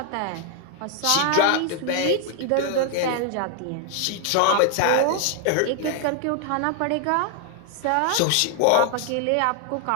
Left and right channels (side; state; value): both; different; correlation 0.00